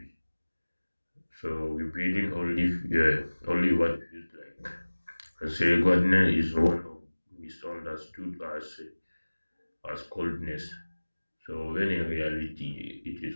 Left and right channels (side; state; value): both; inverted; correlation -1.00